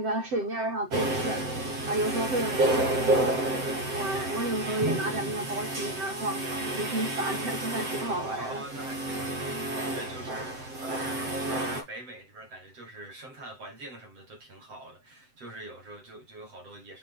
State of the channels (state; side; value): late; left; 7.8 ms